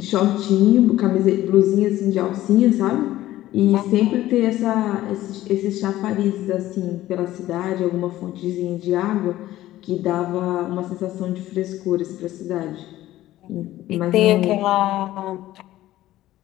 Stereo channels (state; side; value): quieter; right; 14.9 dB